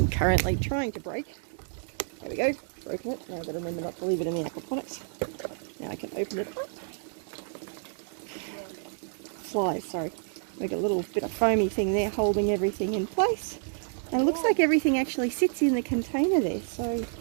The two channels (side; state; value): left; silent; digital silence